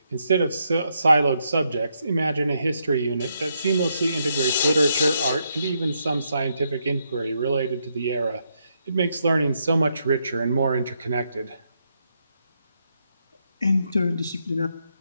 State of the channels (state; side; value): inverted; both; correlation -0.78